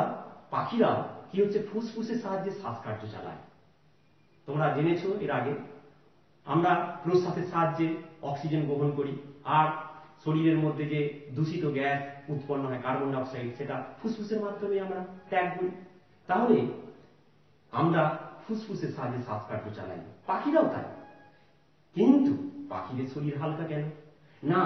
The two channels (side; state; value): both; identical; correlation 1.00